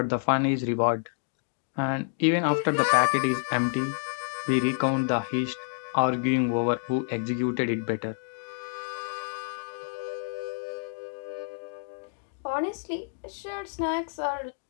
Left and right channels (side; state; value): right; silent; digital silence